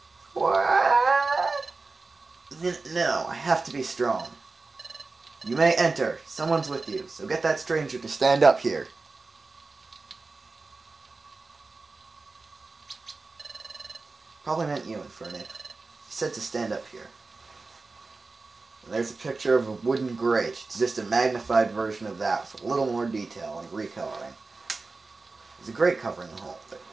What? No, I have to be strong. You may enter. Someone's with you, so get that stranger to stand up here. Probably meant you, Infernape. He said to stand up here. And there's a picture of a wooden grate. It's just a magnified version of that with a little more detail and recoloring. There's a grate covering the hole, but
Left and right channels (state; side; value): quieter; left; 3.8 dB